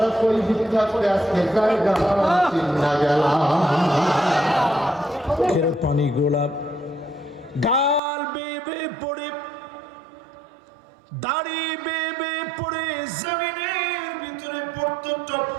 কই ভিক্ষা করে আজকে জায়গা চিন্না গেলাম। পানি গোলাপ গাল বেবে পড়ে, দাড়ি বেবে পড়ে জমিনের ভিতরে পড়তো টপ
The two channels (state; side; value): drops out; left; at 8.0 s